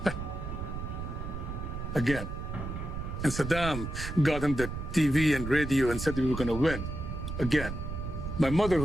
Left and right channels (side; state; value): right; noise; rumble, 6 dB below the sound